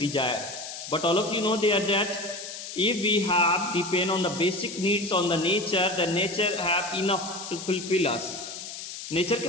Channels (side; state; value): left; noise; hiss, 10 dB below the sound